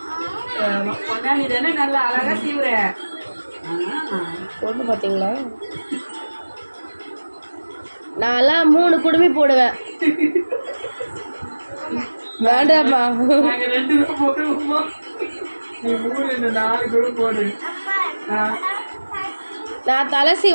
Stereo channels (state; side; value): inverted; both; correlation -1.00